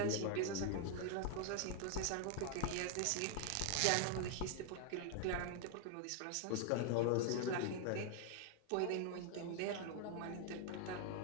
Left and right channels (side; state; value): both; different; correlation 0.00